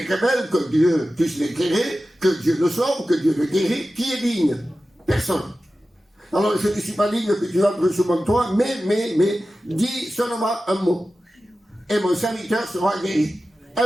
révèle, que Dieu puisse l'éclairer, que Dieu le sauve, que Dieu le guérit. Qui est digne? Personne. Alors je ne suis pas digne que tu entres sous mon toit, mais dis seulement un mot. Et mon serviteur sera guéri.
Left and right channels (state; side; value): normal; both; correlation 0.94